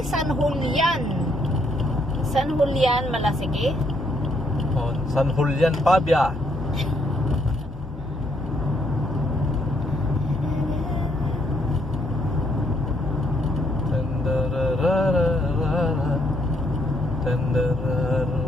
San Julian. San Julian, Malasigi. Oh, San Julian, Pabia.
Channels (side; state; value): both; normal; correlation 0.72